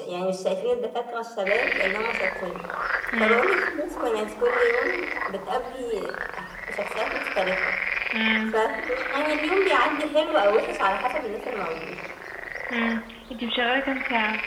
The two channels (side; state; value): both; identical; correlation 1.00